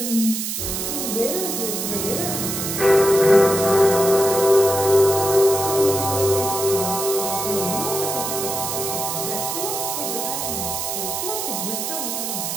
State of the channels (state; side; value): noise; right; hiss, 3 dB below the sound